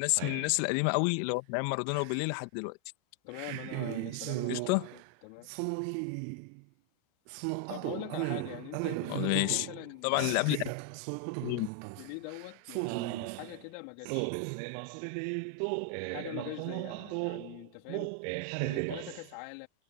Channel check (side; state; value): both; different; correlation 0.00